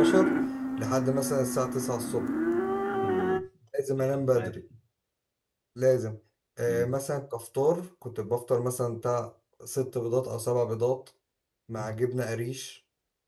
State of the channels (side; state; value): both; identical; correlation 1.00